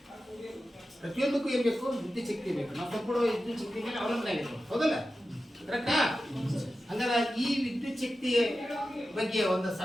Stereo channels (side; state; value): both; normal; correlation 0.93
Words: ಪ್ರತಿಯೊಂದಕ್ಕೂ ಏನು ಬೇಕು? ವಿದ್ಯುತ್ ಶಕ್ತಿ ಬೇಕು. ನಾವು ಸಂಪೂರ್ಣ ವಿದ್ಯುತ್ ಶಕ್ತಿ ಮೇಲೆ ಅವಲಂಬನೆ ಆಗಿರ್ಬೇಕು, ಹೌದಲ್ಲ? ಕರೆಕ್ಟಾ? ಹಂಗಾರೆ ಈ ವಿದ್ಯುತ್ ಶಕ್ತಿಯ ಬಗ್ಗೆ ಒಂದು